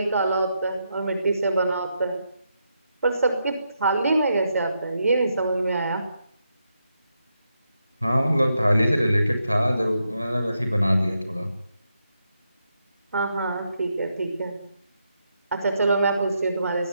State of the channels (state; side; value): inverted; both; correlation -0.82